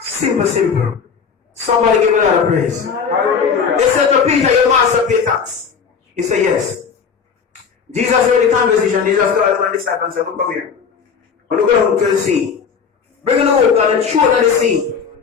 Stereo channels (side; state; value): right; quieter; 6.2 dB